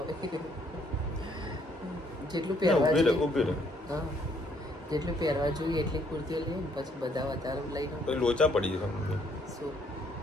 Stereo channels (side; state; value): both; normal; correlation 0.67